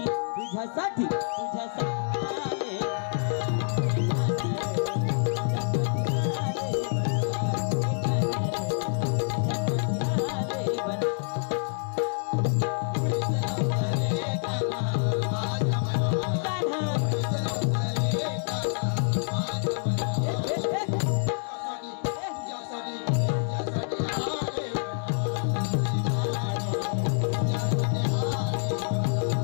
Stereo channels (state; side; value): silent; right; 60 dB below the other